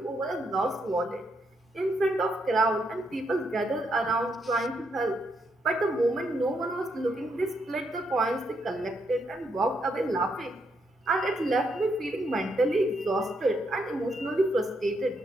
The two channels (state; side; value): normal; both; correlation 0.77